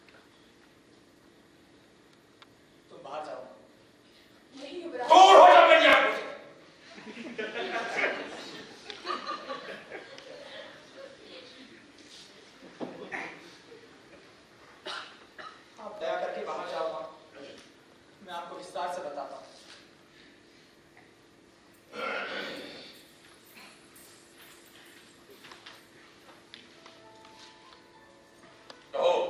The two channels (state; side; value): identical; both; correlation 1.00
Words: बाहर जाओ। नहीं युवराज, दूर हो जाओ मेरी आंखों से। आप दया करके बाहर जाओ, मैं आपको विस्तार से बताता हूँ। कहो,